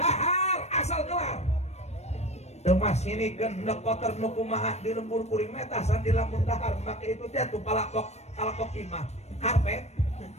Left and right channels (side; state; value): right; late; 0.31 ms